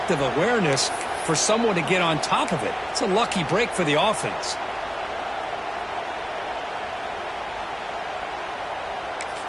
awareness for someone to get on top of it. It's a lucky break for the offense.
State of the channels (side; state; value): both; identical; correlation 1.00